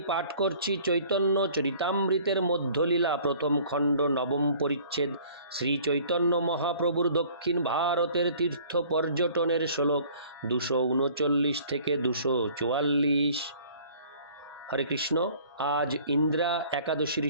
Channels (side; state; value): both; inverted; correlation -0.52